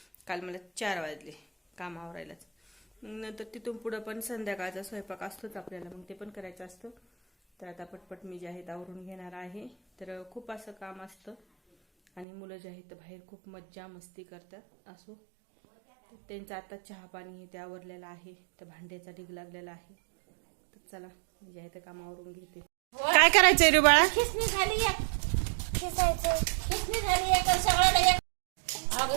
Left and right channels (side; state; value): left; drops out; at 12.2 s